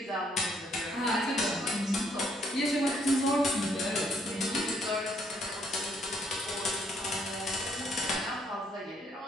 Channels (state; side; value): normal; both; correlation 0.69